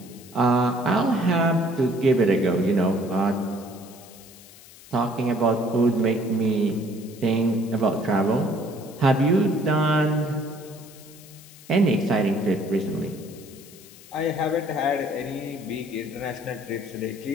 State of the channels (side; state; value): left; noise; hiss, 21 dB below the sound